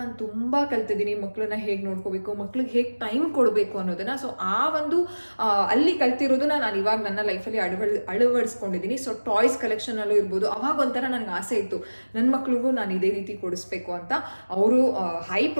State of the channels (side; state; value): both; inverted; correlation -1.00